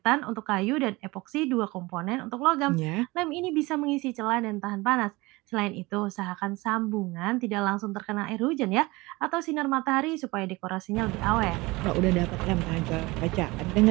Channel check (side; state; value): left; quieter; 22.5 dB